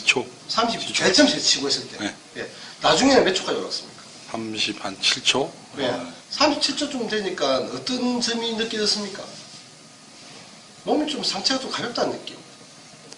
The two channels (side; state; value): both; identical; correlation 1.00